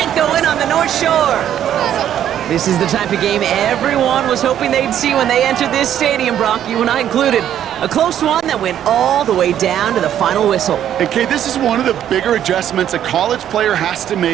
the win on the North Shore. This is the type of game everyone was hoping they'd see when they entered this stadium, Brock, you and I included. A close one that went all the way down to the final whistle. Okay, this is one of the bigger adjustments a college player has to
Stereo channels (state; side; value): quieter; left; 10.6 dB